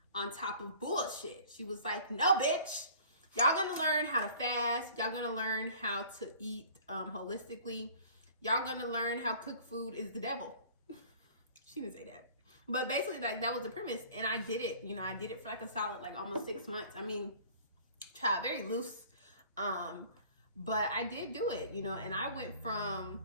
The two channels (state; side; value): inverted; both; correlation -0.49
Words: on top of bullshit. She was like, no, bitch, y'all gonna learn how to fast. Y'all gonna learn how to eat holistically. Y'all gonna learn how cook food is the devil. She didn't say that. But basically, that was the premise, and I did it. You know, I did it for like a solid, like almost 6 months. I mean, tried very loose, but I did do it. You know, and I went from